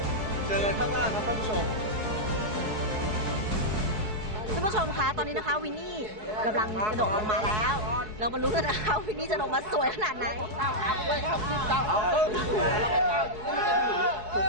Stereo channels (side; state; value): left; late; 4.7 ms